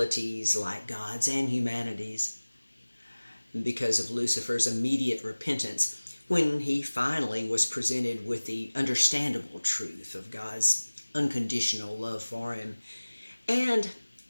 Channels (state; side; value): inverted; both; correlation -1.00